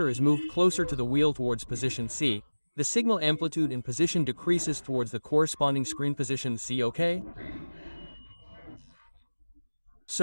is moved closer to the wheel towards position C, the signal amplitude in position decreases towards the corresponding screen position C, okay?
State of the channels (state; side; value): inverted; both; correlation -1.00